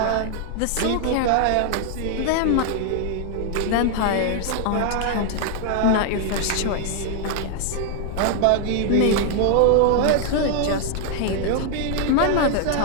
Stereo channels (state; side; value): different; both; correlation 0.00